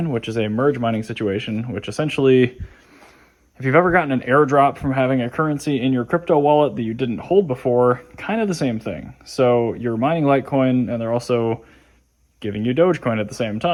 which is a merge mining situation, which essentially, if you've ever gotten an airdrop from having a currency in your crypto wallet that you didn't hold before, kind of the same thing. So you're mining Litecoin and they're also giving you Dogecoin at the same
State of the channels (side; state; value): both; identical; correlation 1.00